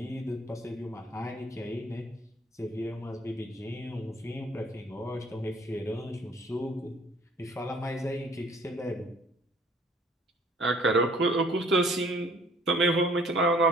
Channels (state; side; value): normal; both; correlation 0.57